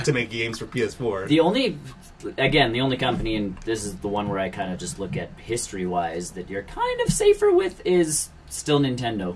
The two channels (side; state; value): both; identical; correlation 1.00